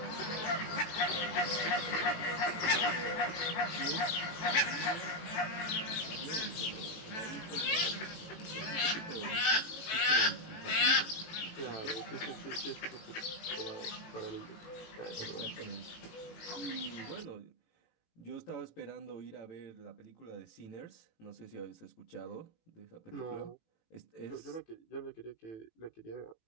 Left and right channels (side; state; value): right; late; 18 ms